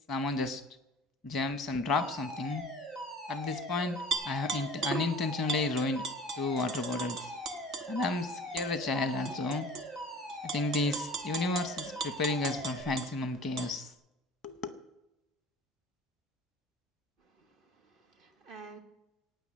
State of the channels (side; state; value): both; normal; correlation 0.45